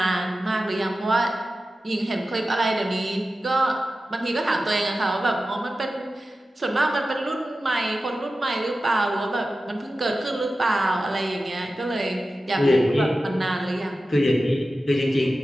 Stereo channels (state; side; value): normal; both; correlation 0.94